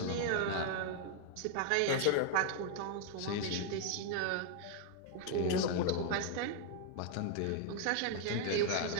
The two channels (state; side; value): different; both; correlation 0.00